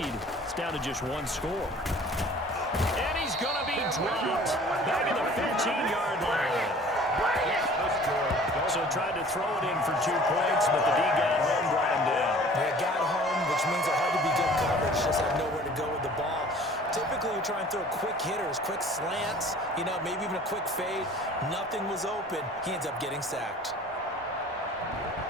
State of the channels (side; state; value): both; normal; correlation 0.48